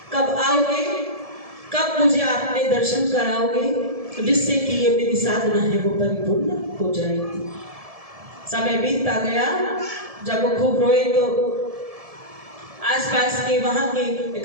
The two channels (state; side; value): late; left; 1.7 ms